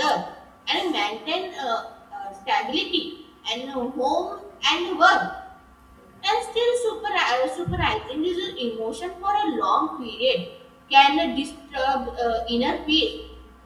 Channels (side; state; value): both; identical; correlation 1.00